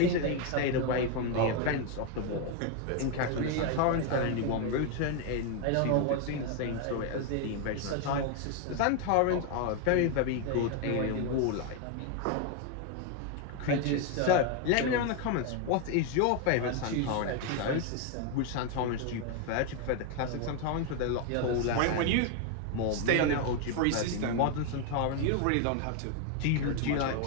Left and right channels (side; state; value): both; different; correlation 0.01